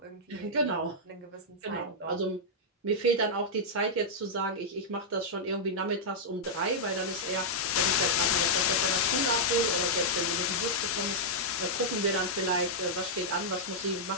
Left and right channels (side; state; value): both; normal; correlation -0.07